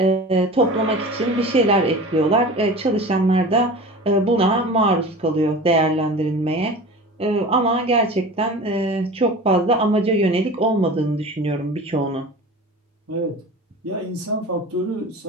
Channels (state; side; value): normal; both; correlation 0.36